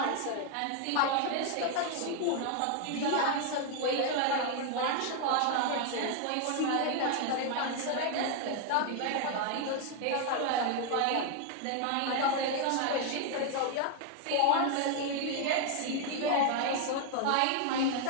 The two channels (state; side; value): different; both; correlation 0.00